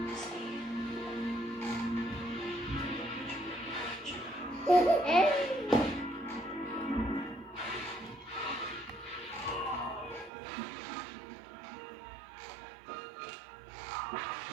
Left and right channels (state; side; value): drops out; left; at 10.3 s